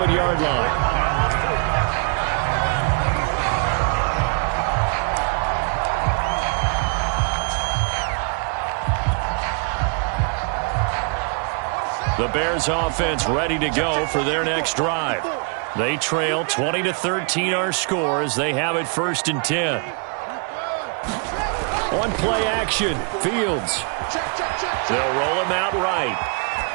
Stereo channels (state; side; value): quieter; left; 39.1 dB